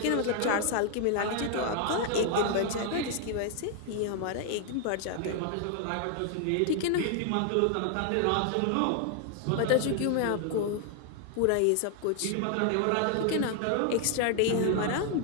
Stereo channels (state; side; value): different; both; correlation 0.00